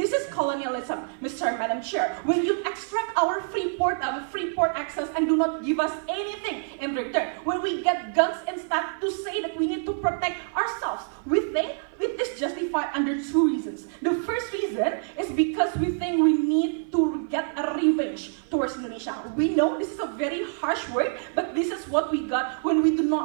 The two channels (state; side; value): silent; left; 56 dB below the other